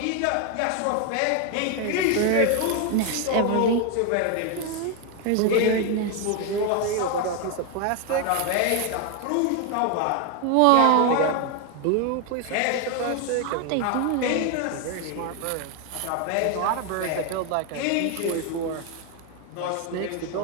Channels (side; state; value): both; different; correlation 0.01